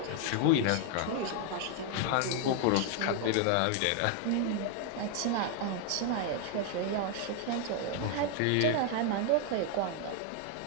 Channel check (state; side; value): different; both; correlation 0.00